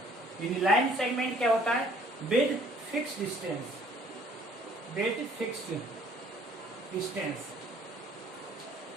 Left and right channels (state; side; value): normal; both; correlation 0.58